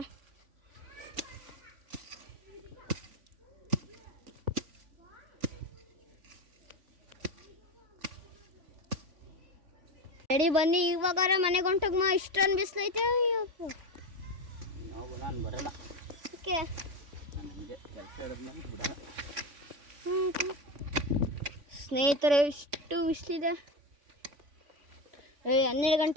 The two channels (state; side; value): late; left; 3.5 ms